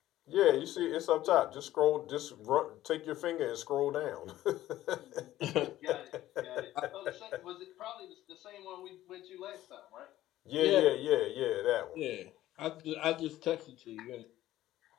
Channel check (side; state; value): right; quieter; 14.3 dB